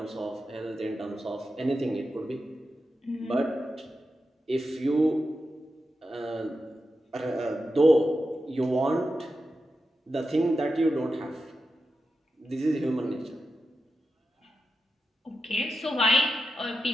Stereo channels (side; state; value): both; normal; correlation 0.90